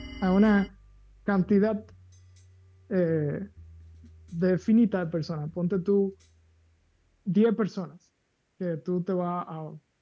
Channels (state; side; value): identical; both; correlation 1.00